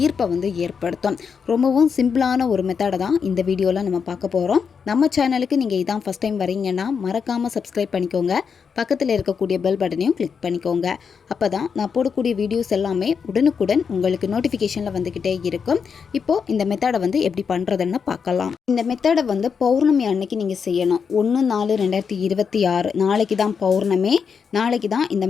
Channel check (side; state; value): right; quieter; 6.3 dB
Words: ஈர்ப்பை ஏற்படுத்தும். ரொம்பவும் சிம்பிளான ஒரு மெத்தடை தான் இந்த வீடியோவில் நம்ம பார்க்க போகிறோம். நம்ம சேனலுக்கு நீங்கள் இதான் ஃபஸ்ட் டைம் வரீங்கன்னா மறக்காமல் சப்ஸ்கிரைப் பண்ணிக்கோங்க. பக்கத்தில் இருக்கக்கூடிய பெல் பட்டனையும் கிளிக் பண்ணிக்கோங்க. அப்போ தான் நான் போடக்கூடிய வீடியோஸ் எல்லாமே உடனுக்குடன் உங்களுக்கு நோட்டிஃபிகேஷனில் வந்துக்கிட்டே இருக்கும். இப்போது இந்த மெத்தடை எப்படி பண்ணுறதுன்னு பார்க்கலாம். இந்த மெத்தடை பௌர்ணமி அன்னைக்கு நீங்கள் செய்யணும். 1/4/2026 நாளைக்கு தான் பௌர்ணமி. நாளைக்கு தான் இந்த